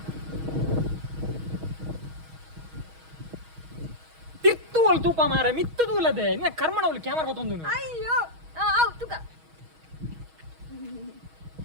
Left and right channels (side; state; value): left; late; 6.3 ms